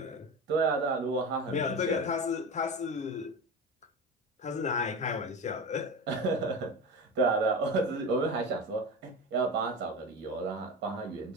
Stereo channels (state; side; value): normal; both; correlation 0.26